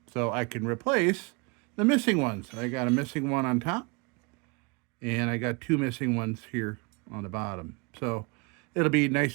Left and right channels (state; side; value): quieter; left; 30.1 dB